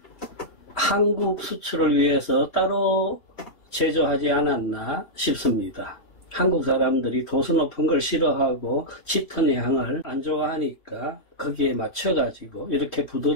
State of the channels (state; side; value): late; right; 3.1 ms